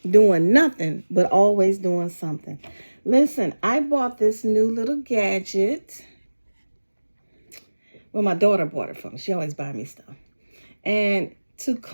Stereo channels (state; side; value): inverted; both; correlation -1.00